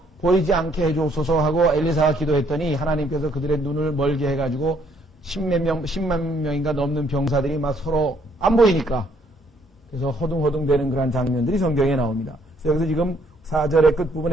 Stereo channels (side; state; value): both; normal; correlation 0.67